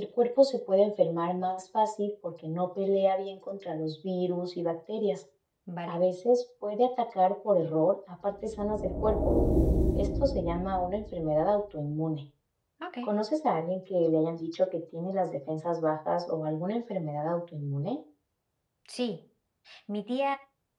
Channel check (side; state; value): both; identical; correlation 1.00